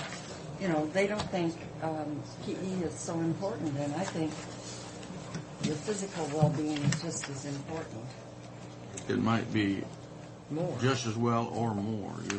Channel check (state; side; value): identical; both; correlation 1.00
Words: you know, they don't think PE is so important, and I think your physical well-being is just as important. It might be More. Just as well or more, you